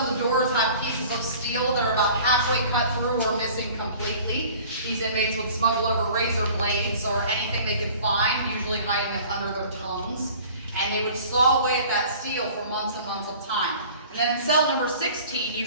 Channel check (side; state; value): both; inverted; correlation -0.47